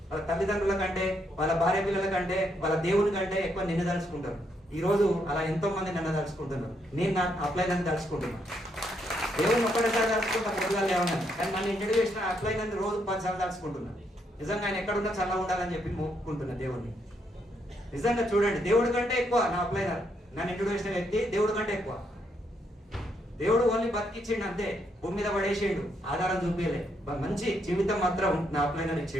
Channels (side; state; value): both; normal; correlation 0.76